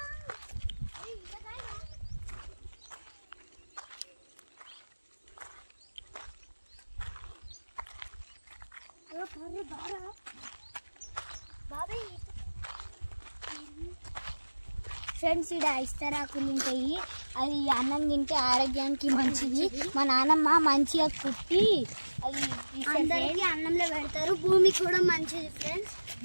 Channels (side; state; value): both; inverted; correlation -1.00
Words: ఫ్రెండ్స్, ఇక్కడ ఇస్తరాకులు ఉంటాయి, అది అన్నం తింటే ఆరోగ్యానికి మంచిది. మా నాన్నమ్మ మంచిగా కుట్టి అది అందరికీ అన్నంలో పెడతారు. భూమి కూడా మంచిది ఫ్రెండ్స్,